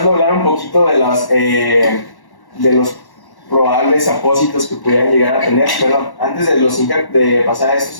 a hablar un poquito de los probables apósitos que pudieran llegar a tener, perdón, antes de pasar a estos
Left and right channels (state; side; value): late; right; 1.1 ms